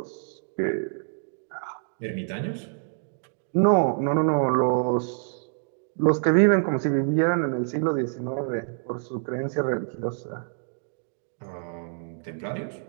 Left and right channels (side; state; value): left; silent; digital silence